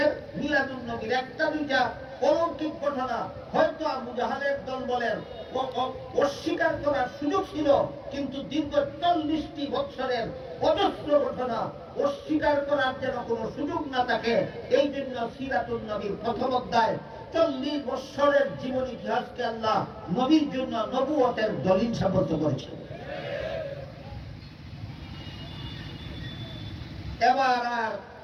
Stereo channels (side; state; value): both; identical; correlation 1.00